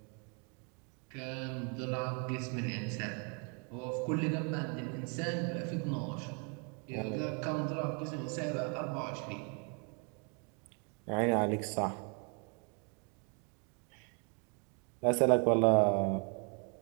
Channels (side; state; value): left; quieter; 36.4 dB